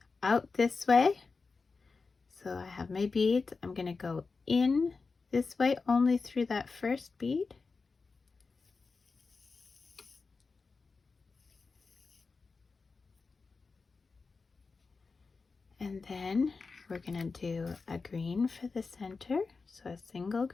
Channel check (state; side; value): quieter; right; 4.4 dB